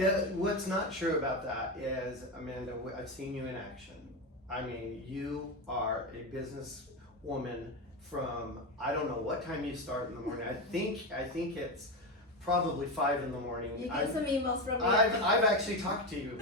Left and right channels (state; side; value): normal; both; correlation 0.16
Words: what's not true about that is, Amanda, I've seen you in action. I mean, you are a businesswoman from, I don't know what time you start in the morning. I think it's probably 5 in the morning. You get some emails from me. I've actually talked to you